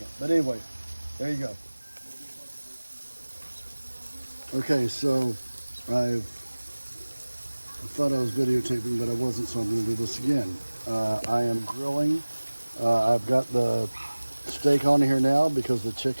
But anyway, there you go. Okay, so I thought I was videotaping, but I wasn't, so I'm going to do this again. I am grilling. I've got the steak on here now because the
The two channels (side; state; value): both; inverted; correlation -1.00